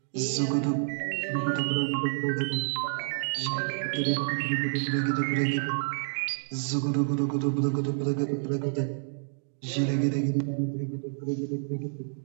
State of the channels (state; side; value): silent; left; digital silence